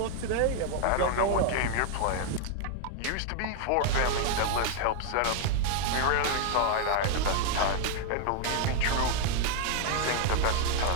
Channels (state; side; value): different; both; correlation 0.00